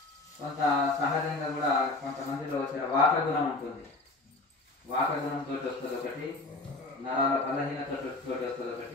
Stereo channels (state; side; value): quieter; right; 3.0 dB